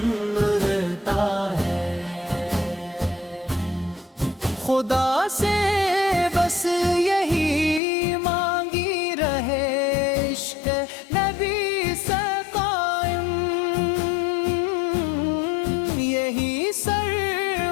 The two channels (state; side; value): drops out; right; at 7.8 s